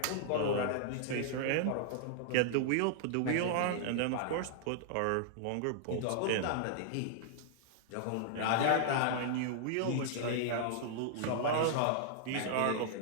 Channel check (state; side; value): different; both; correlation -0.01